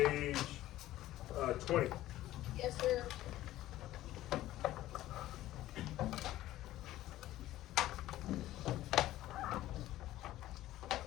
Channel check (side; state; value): right; quieter; 14.9 dB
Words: 20. Yes, sir.